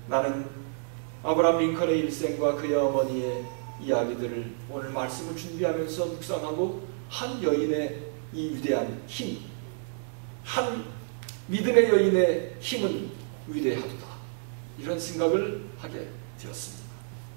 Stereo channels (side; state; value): left; silent; 58 dB below the other